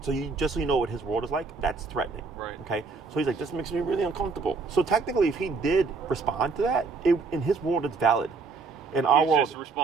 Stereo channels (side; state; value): left; quieter; 4.4 dB